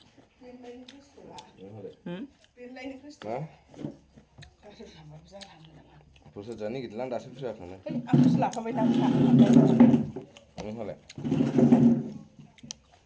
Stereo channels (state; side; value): identical; both; correlation 1.00